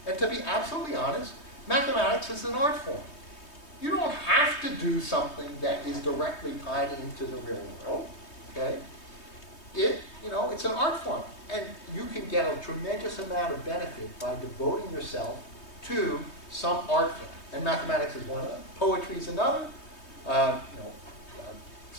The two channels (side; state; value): right; late; 3.2 ms